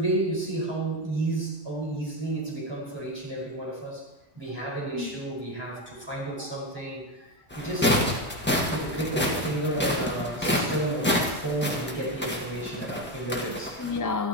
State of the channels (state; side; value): normal; both; correlation 0.14